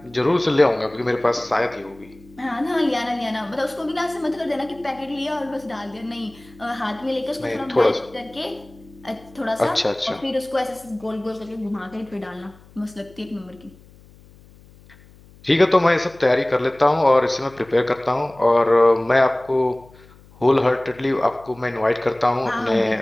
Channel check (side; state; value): left; noise; hum, 25 dB below the sound